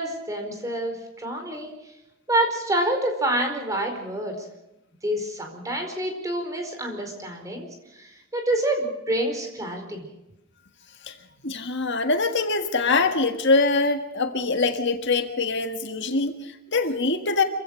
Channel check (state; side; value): normal; both; correlation -0.05